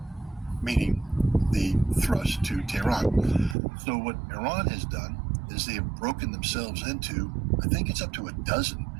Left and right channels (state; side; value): drops out; left; at 3.6 s